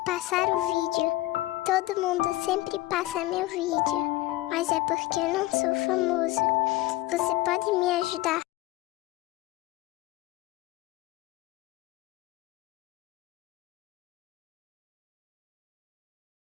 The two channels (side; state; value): right; quieter; 17.7 dB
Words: passar o vídeo. Todo mundo sempre passa meu vídeo, mas é porque eu não sou famoso. Você pode me ajudar?